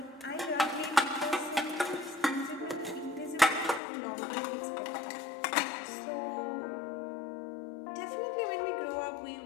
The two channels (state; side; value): drops out; right; at 3.8 s